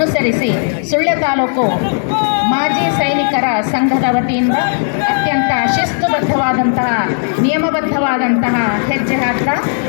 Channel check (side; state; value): right; silent; 61 dB below the other